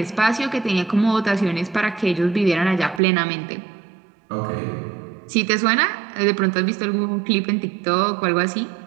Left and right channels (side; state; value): left; drops out; at 3.0 s